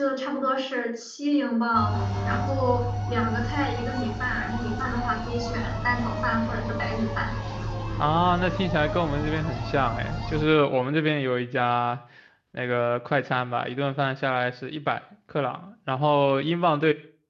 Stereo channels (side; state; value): both; identical; correlation 1.00